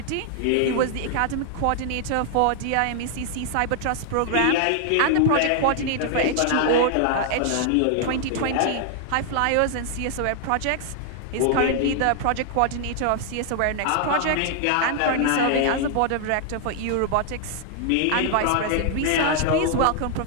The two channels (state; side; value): different; both; correlation 0.00